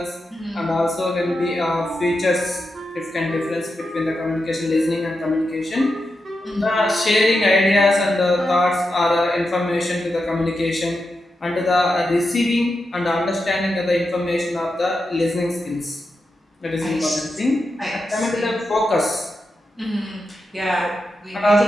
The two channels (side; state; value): both; normal; correlation 0.88